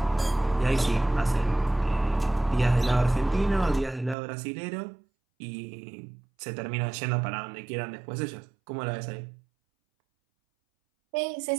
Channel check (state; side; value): drops out; left; at 4.2 s